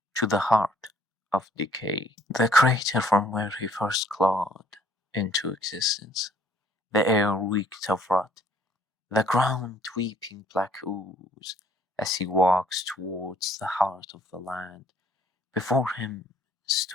to the heart of decay. The crater from where he first clawed into existence. The air reeked of rot, the ground weeping black ooze, as he walks towards the heart of the land. Before him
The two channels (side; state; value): both; normal; correlation 0.60